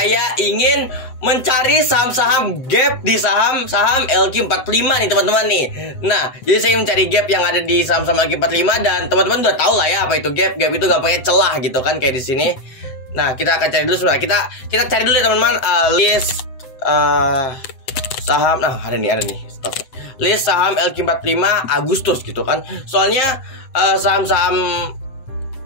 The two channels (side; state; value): right; late; 7.9 ms